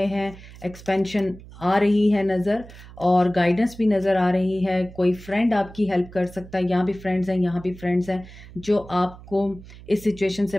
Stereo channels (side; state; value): right; noise; hum, 18 dB below the sound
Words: हैं। एक्सपेंशन आ रही है नज़र और गाइडेंस भी नज़र आ रही है। कोई फ्रेंड आपकी हेल्प कर सकता है, यहाँ भी फ्रेंड्स हैं, यहाँ भी फ्रेंड्स हैं जो आपको इस सिचुएशन से